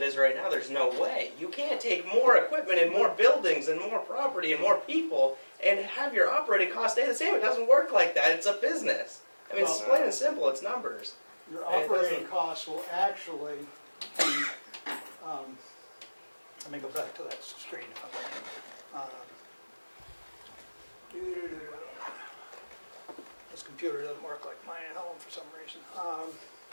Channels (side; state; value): both; inverted; correlation -1.00